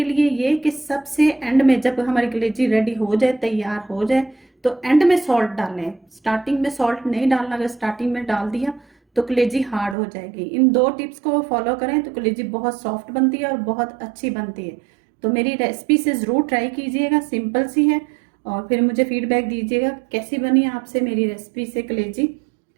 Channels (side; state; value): left; drops out; at 10.0 s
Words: लिए ये कि सबसे एंड में जब हमारी कलेजी रेडी हो जाए, तैयार हो जाए, तो एंड में सॉल्ट डालें। स्टार्टिंग में सॉल्ट नहीं डालना, अगर स्टार्टिंग में डाल दिया तो कलेजी हार्ड हो जाएगी। इन 2 टिप्स को फॉलो करें तो कलेजी बहुत सॉफ्ट बनती है और बहुत अच्छी बनती है। तो मेरी रेसिपी से ज़रूर ट्राई कीजिएगा, सिंपल सी है। और फिर मुझे फीडबैक दीजिएगा कैसी बनी आपसे मेरी रेसिपी से कलेजी।